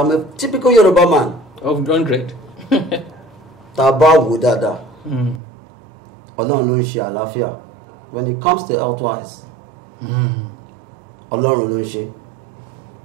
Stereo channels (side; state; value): left; drops out; at 5.4 s